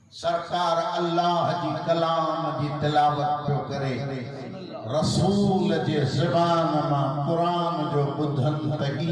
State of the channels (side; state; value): both; identical; correlation 1.00